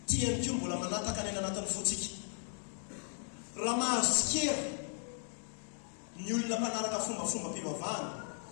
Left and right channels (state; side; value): silent; right; 53 dB below the other